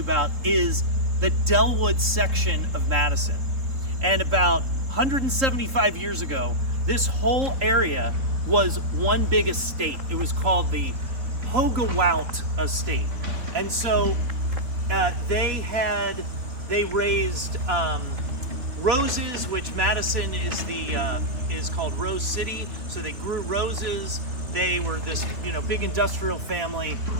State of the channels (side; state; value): left; late; 4.1 ms